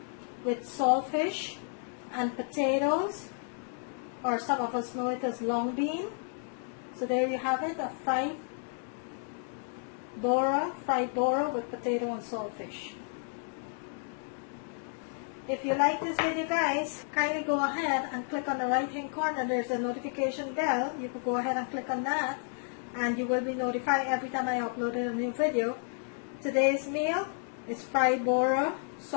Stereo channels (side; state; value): right; silent; 57 dB below the other